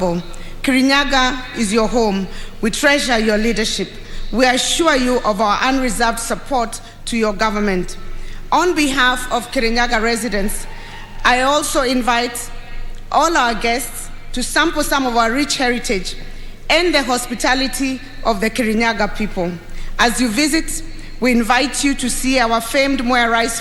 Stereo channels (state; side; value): identical; both; correlation 1.00